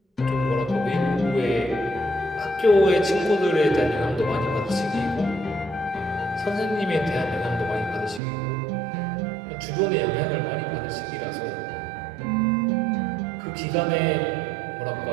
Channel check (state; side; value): drops out; left; at 8.2 s